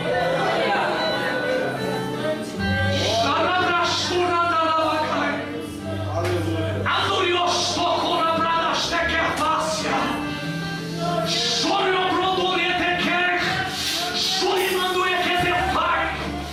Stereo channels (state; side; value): identical; both; correlation 1.00